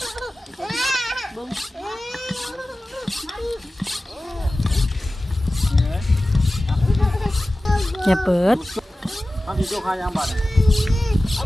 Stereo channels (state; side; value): normal; both; correlation 0.96